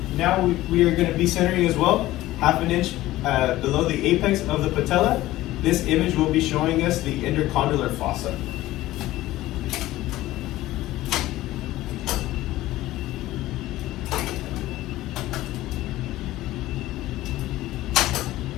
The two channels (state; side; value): quieter; right; 16.3 dB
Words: Now we are going to be centering as well, 1/2 inch below the apex of the patella. This image will be showing us the intercondylar fossa.